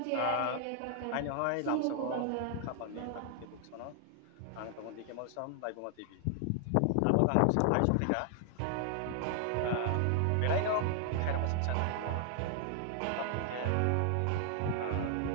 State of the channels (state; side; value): different; both; correlation 0.00